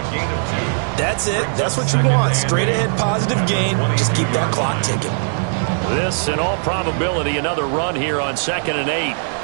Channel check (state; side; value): silent; left; digital silence